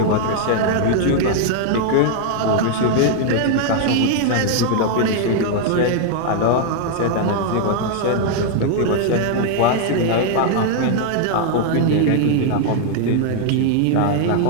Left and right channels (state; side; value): different; both; correlation 0.00